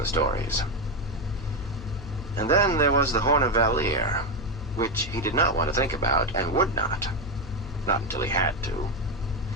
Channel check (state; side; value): noise; left; hum, 13 dB below the sound